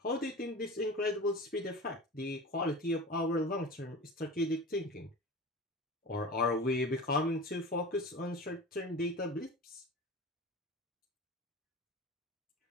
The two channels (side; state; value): both; normal; correlation 0.33